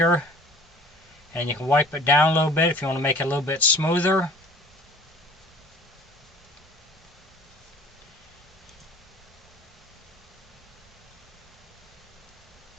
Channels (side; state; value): both; normal; correlation 0.47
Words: and you can wipe it down a little bit if you want to make it a little bit smoother.